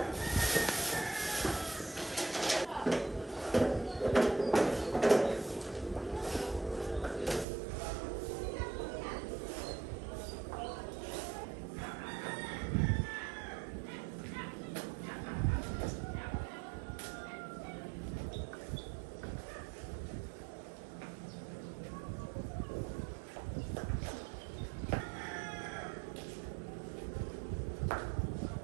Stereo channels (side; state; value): left; drops out; at 7.5 s